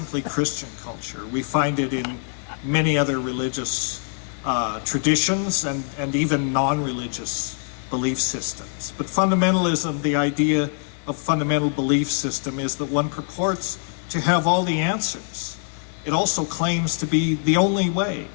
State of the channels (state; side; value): silent; right; 63 dB below the other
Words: Christian culture. We find it in many other religious traditions and even non-religious belief systems. But fundamentalism, the idea of fundamental belief system, is that one purports to have all the answers. It also claims to be the only way.